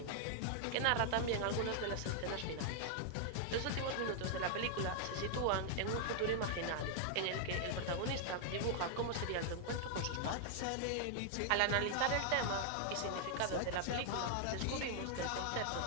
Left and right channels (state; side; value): different; both; correlation 0.00